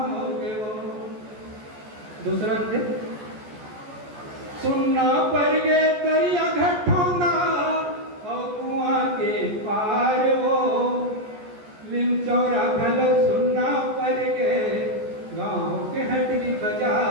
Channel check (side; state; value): left; late; 14 ms